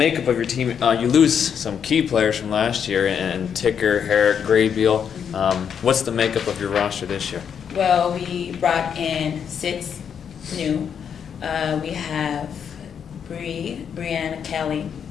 of your team. You lose some key players from last year, and Ticker, Herrick, Graybeal. What's the makeup of your roster this year? Well, we brought in 6 new. We have Brianne Kelly,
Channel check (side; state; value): right; quieter; 7.7 dB